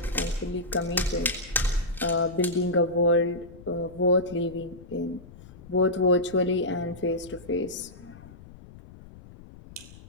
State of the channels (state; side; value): noise; left; rumble, 19 dB below the sound